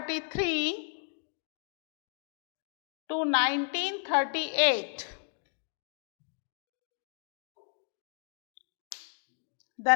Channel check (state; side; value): silent; right; 55 dB below the other